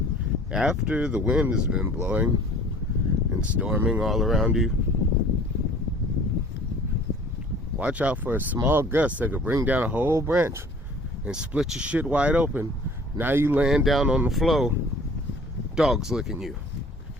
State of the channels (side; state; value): both; normal; correlation 0.50